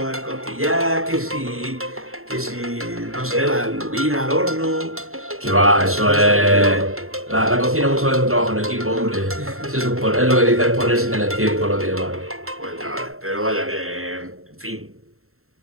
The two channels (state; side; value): late; left; 0.62 ms